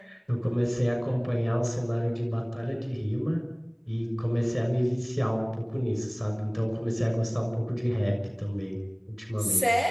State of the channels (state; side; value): identical; both; correlation 1.00